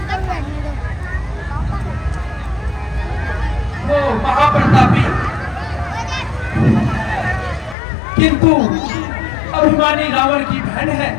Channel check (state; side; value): drops out; right; at 7.8 s